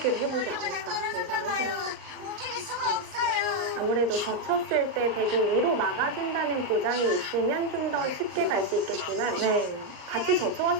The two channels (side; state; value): left; late; 38 ms